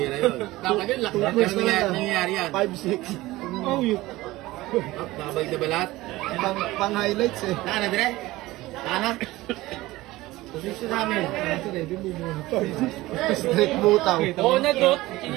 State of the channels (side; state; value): left; quieter; 18.5 dB